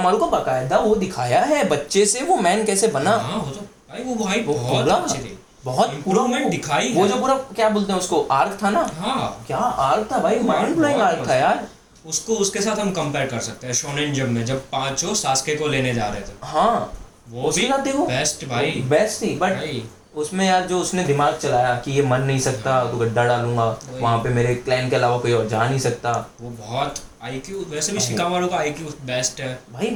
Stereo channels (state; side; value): identical; both; correlation 1.00